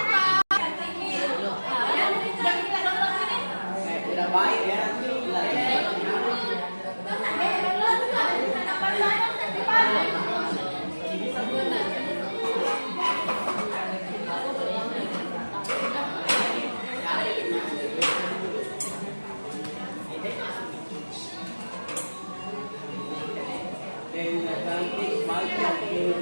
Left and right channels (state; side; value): inverted; both; correlation -1.00